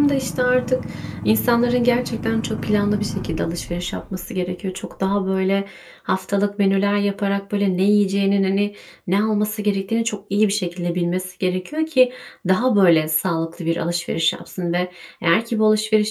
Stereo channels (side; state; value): both; identical; correlation 1.00